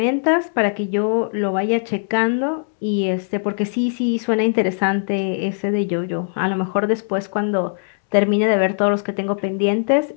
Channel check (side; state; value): right; silent; 66 dB below the other